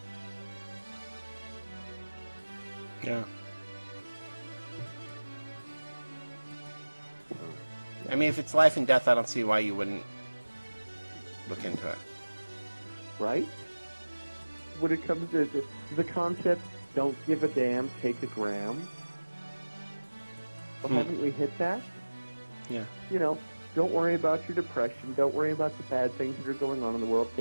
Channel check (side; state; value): both; inverted; correlation -1.00